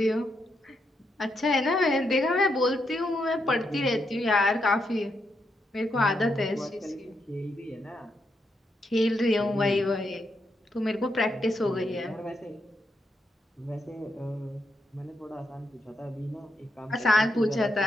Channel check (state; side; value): normal; both; correlation 0.81